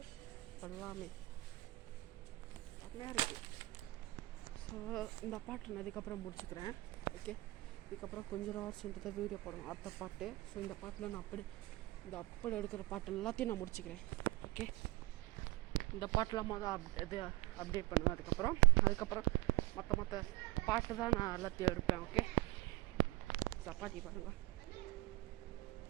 எல்லாமே செம்மையாக இருக்குது. ஸோ இந்த பாட்டு நான் இதுக்கப்புறம் முடிச்சுக்கிறேன். ஓகே, இதுக்கப்புறம் கொஞ்சம் ஹவர்ஸ்ன்ட்டு தான் வீடியோ போடணும் அடுத்த பாட்டு. ஸோ இந்த பாட்டில் நான் அப்படி எடுக்கிற பாட்டு எல்லாத்தையும் நான் முடிச்சுக்கிறேன். ஓகே, இந்த பாட்டெலாம் இது அப்டேட் பண்ணுவேன். அதுக்கப்புறம் மற்ற பாட்டு தான் நான் எல்லாத்தையும் எடுப்பேன். ஓகே, சப்பாத்தி பாருங்கள்.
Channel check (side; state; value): left; quieter; 20.7 dB